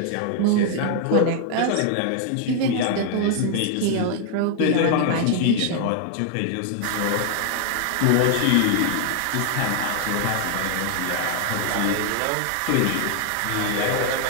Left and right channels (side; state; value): both; different; correlation 0.00